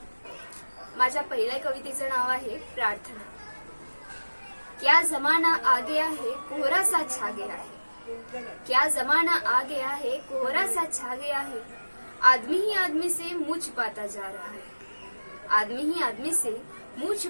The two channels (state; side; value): inverted; both; correlation -1.00